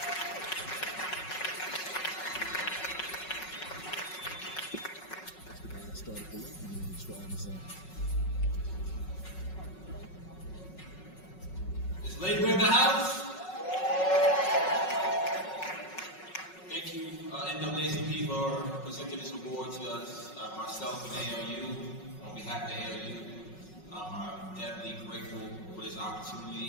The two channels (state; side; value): late; right; 5.4 ms